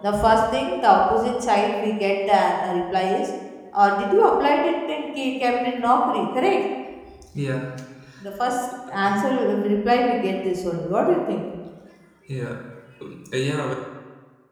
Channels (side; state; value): both; identical; correlation 1.00